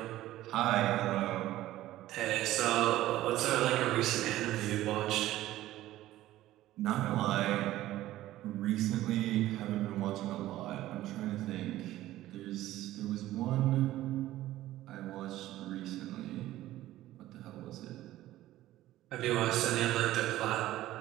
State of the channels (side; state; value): left; quieter; 15.0 dB